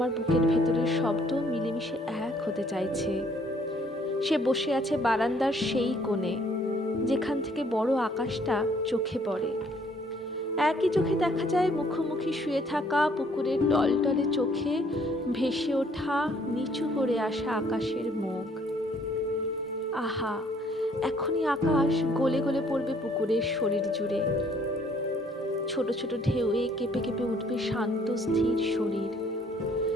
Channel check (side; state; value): both; normal; correlation 0.62